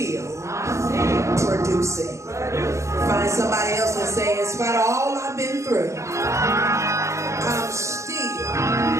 producing. Find somebody else and say, in spite of all I've been through, I'm still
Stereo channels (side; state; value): left; late; 0.14 ms